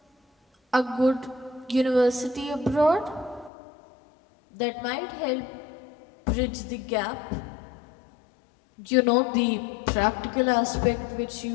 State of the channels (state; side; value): drops out; right; at 3.5 s